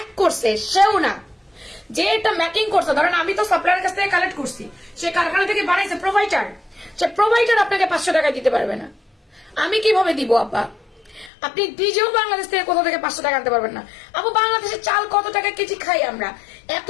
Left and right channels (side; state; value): right; drops out; at 11.3 s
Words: করছে সেও না, যে এটা ম্যাকিং করছে। ধরেন আমি তো সাপ্লায়ারের কাছ থেকে কালেক্ট করছি, সে কারখানা থেকে বানাইছে প্রোভাইডার, সে প্রোভাইডার আপনাকে 500 টাকায় দিতে পারবে না। আমি কিভাবে দিব আপা? আপনি নিজেও বাংলাদেশ থেকে কোথা থেকে 500 টাকা আনতে পারবেন না। আপু বাংলাদেশের চাল কত টাকা কেজি খাই আমরা? এত